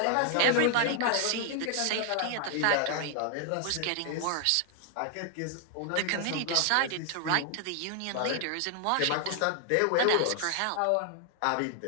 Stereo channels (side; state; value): both; different; correlation 0.00